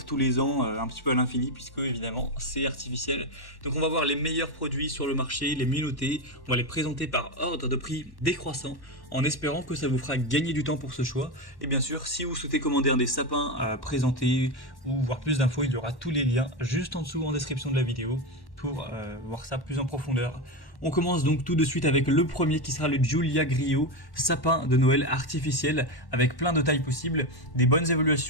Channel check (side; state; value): right; late; 1.1 ms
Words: tous les ans un petit peu à l'infini, puisque évidemment c'est artificiel. Donc on va voir les meilleurs produits sur le marché, les mieux notés, on va les présenter par ordre de prix décroissant, en espérant que ça vous fera gagner du temps pour ce choix. Et bien sûr, si vous souhaitez commander un des sapins présentés ou voir plus d'infos, il y aura tous les liens juste en dessous en description de la vidéo pour voir ça plus en profondeur. On commence donc tout de suite avec le premier qui sera le Giulia Griot, sapin de Noël artificiel avec plein de tailles possibles, des bonnes